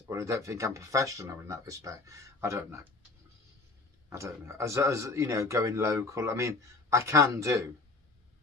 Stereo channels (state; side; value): quieter; right; 3.4 dB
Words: or I don't think I'm professional in that respect, I don't know. As you know, going local, I mean, I can do,